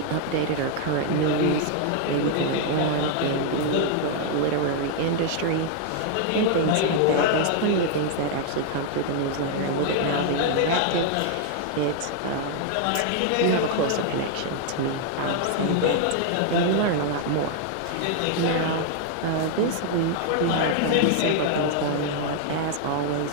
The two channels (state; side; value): different; both; correlation 0.00